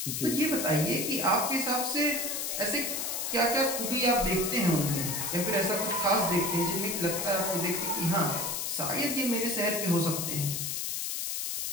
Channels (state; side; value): noise; left; hiss, 2 dB below the sound